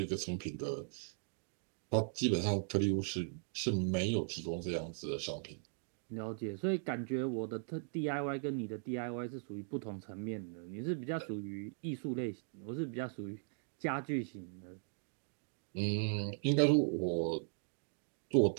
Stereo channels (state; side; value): silent; left; digital silence